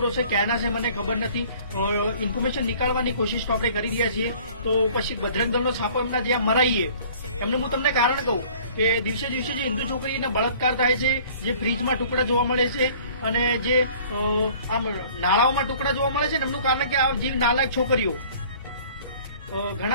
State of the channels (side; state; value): both; inverted; correlation -0.51